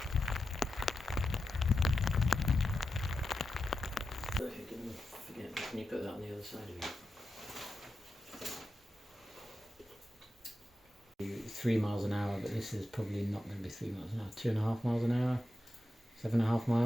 you put that on the other side of you? 3 miles an hour, but this is probably not going to be 3 miles an hour. 2.5 miles an hour, 7.5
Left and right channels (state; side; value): normal; both; correlation 0.90